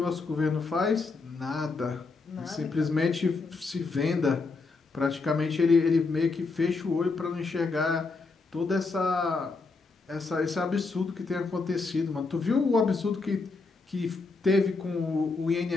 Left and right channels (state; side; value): quieter; right; 4.0 dB